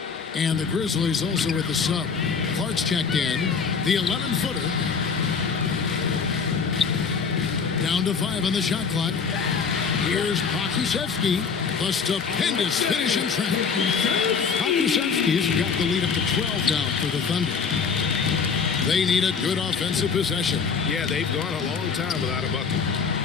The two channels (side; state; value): right; quieter; 5.8 dB